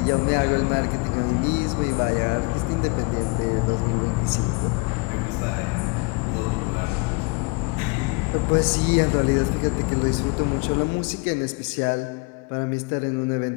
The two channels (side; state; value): right; quieter; 28.7 dB